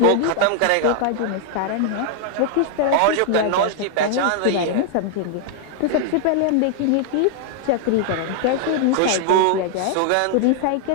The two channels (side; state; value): both; different; correlation 0.00